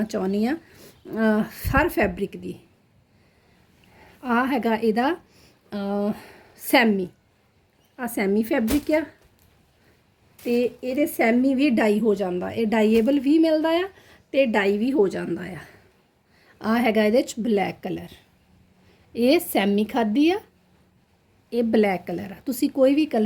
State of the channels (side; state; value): both; identical; correlation 1.00